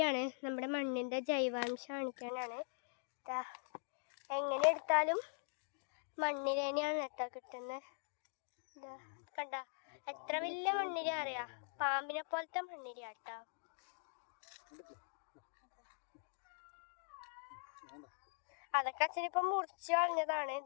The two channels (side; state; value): right; silent; digital silence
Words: ആണ്. നമ്മുടെ മണ്ണിൻ്റെ ജൈവാംശം കാണിക്കാനാണ്. എങ്ങനെ എടുത്താലും മണ്ണിര തന്നെയാണ് കിട്ടുന്നത്. കണ്ട എത്ര വലിയ മണ്ണിര അറിയാം, പാമ്പിനെ പോലത്തെ മണ്ണിര കേട്ടോ. അതൊക്കെ അച്ഛനിപ്പം മുറിച്ച് കളഞ്ഞതാണ്.